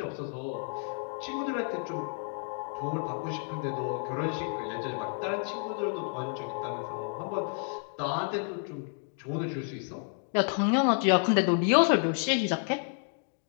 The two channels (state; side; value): silent; right; 57 dB below the other